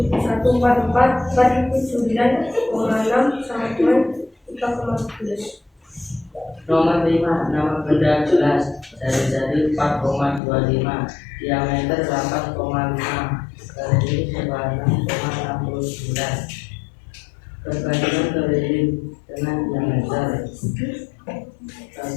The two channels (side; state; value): right; drops out; at 10.4 s